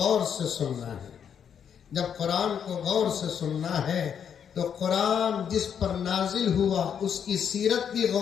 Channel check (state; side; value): quieter; right; 8.0 dB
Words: سے سننا ہے جب قرآن کو غور سے سننا ہے تو قرآن جس پر نازل ہوا اس کی سیرت بھی